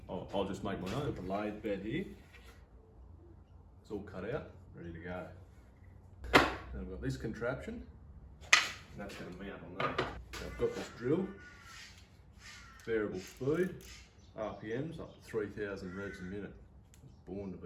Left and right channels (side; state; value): both; identical; correlation 1.00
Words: I'll just make my own. The lathe bed here. It's all cut out, ready to go. And I've got this contraption, and that's going to mount on that. So I've got this drill, variable speed, RPMs up to 3,000 revs a minute. Born to